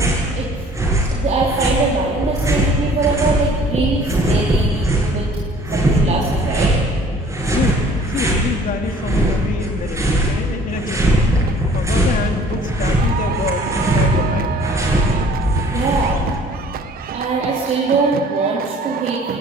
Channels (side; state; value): both; normal; correlation 0.53